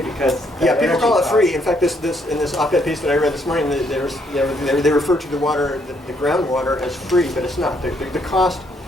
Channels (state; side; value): normal; both; correlation 0.71